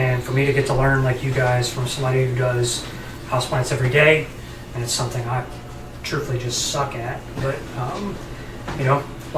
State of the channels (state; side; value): identical; both; correlation 1.00